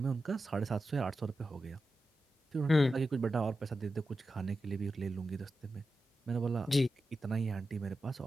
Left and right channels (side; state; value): both; normal; correlation 0.91